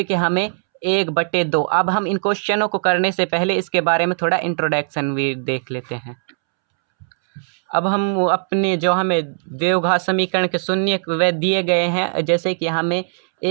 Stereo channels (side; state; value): left; silent; 66 dB below the other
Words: कि हमें 1/2। अब हम इन क्वेश्चनों को करने से पहले इसके बारे में थोड़ा इंट्रोडक्शन भी देख लेते हैं। अब हम अपने जो हमें द्विघात समीकरण के शून्य वे दिए गए हैं, जैसे कि हमें